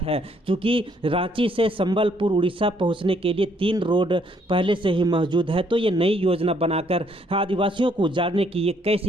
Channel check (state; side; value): normal; both; correlation 0.68